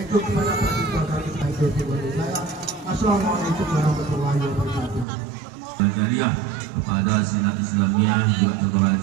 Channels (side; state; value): left; drops out; at 5.1 s